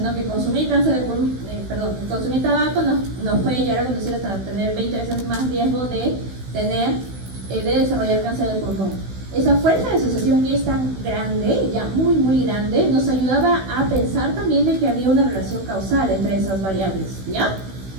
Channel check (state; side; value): late; left; 16 ms